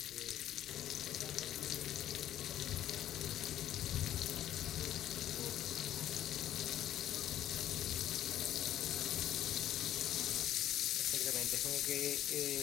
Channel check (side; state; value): right; quieter; 12.0 dB